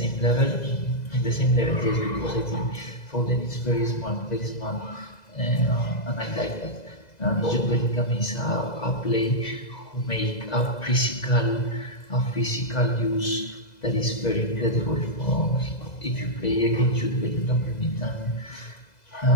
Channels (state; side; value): late; right; 2.0 ms